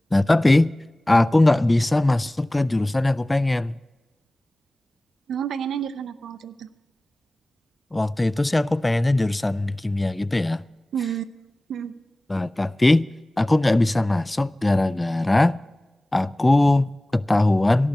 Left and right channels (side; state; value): both; normal; correlation 0.98